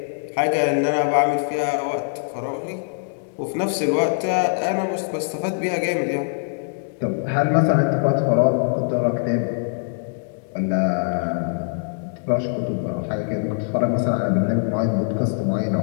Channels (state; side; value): silent; right; digital silence